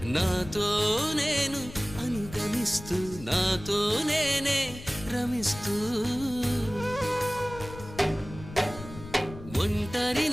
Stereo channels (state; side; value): noise; left; rumble, 14 dB below the sound